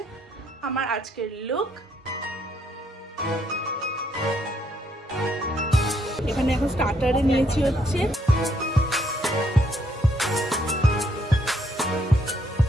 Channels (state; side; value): normal; both; correlation 0.71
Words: আমার আজকের লুক। এখানে এখন স্টার্টারে নিয়েছি হচ্ছে